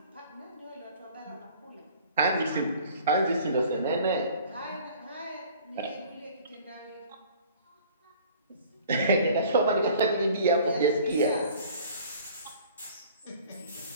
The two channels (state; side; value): inverted; both; correlation -0.50